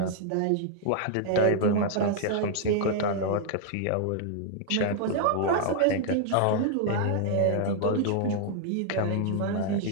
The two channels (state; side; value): different; both; correlation -0.01